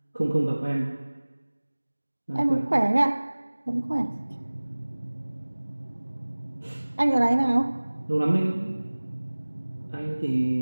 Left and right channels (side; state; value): both; inverted; correlation -1.00